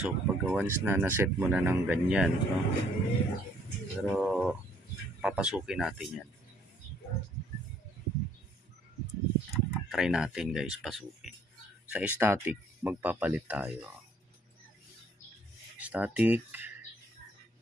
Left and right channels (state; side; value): normal; both; correlation 0.64